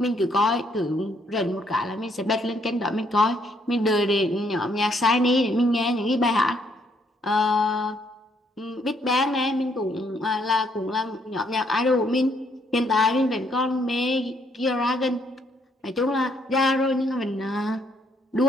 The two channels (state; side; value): normal; both; correlation 0.70